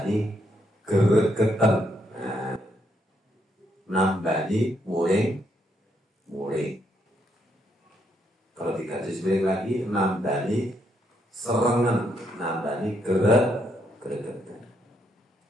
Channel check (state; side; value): normal; both; correlation 0.76